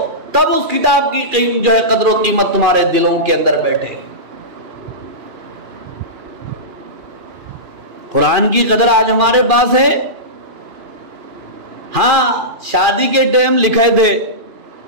تب اس کتاب کی جو ہے قدر و قیمت تمہارے دلوں کے اندر بیٹھے۔ قرآن کی قدر آج ہمارے پاس ہے۔ ہاں شادی کے ٹائم لکھے تھے،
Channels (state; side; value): late; left; 2.4 ms